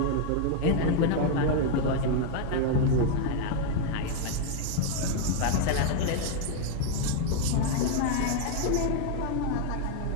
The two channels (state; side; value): different; both; correlation 0.00